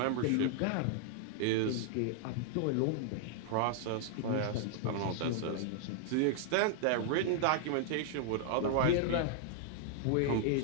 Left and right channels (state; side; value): different; both; correlation 0.00